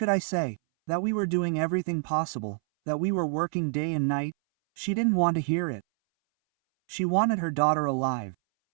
I say? That we were doing everything possible, that we were working day and night? She didn't want to hear it. She wanted her daughter alive.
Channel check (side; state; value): left; silent; 60 dB below the other